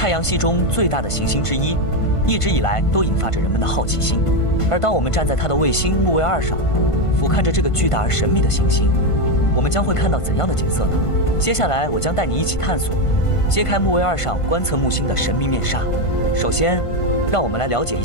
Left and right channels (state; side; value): late; right; 1.5 ms